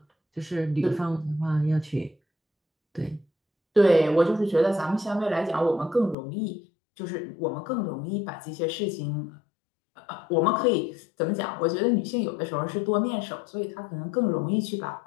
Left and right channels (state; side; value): drops out; right; at 6.2 s